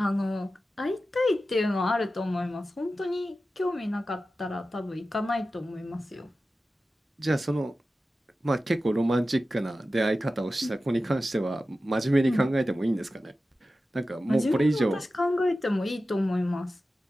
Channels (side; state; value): both; normal; correlation 0.94